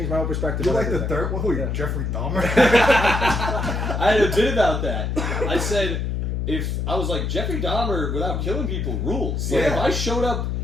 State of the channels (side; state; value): left; noise; hum, 1 dB below the sound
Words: my whole perspective. You on like the everything. third one? Who, Yeah. Jeffrey Dahmer? I had a bit about that. I said, if I was like Jeffrey Dahmer without killing people rules. Like Yeah. if I showed up